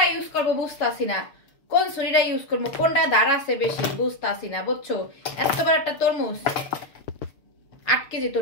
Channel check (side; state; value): right; late; 6.3 ms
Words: ইউজ করবো বুঝতাছি না কোন ছুরিটা ইউজ করবো কোনটা ধার আছে বেশি বুঝতাছি না বুঝছো এত বড় একটা তরমুজ 8 কেজি